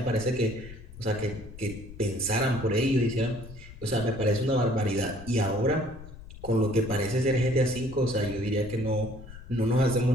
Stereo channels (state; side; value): noise; left; rumble, 15 dB below the sound